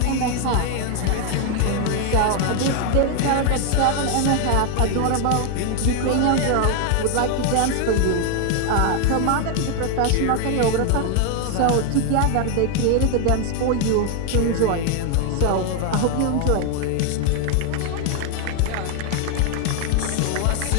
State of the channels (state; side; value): different; both; correlation 0.01